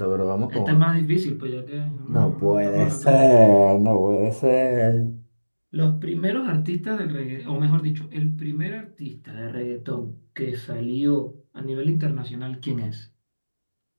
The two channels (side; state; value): both; inverted; correlation -1.00